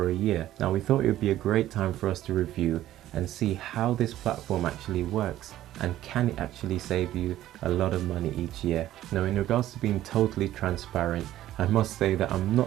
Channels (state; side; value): quieter; left; 13.6 dB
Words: a year. Now we thought it would be a great time for us to review and see how this platform actually works and can it actually save you a lot of money each year. Now in regards to being totally transparent, I must say that I'm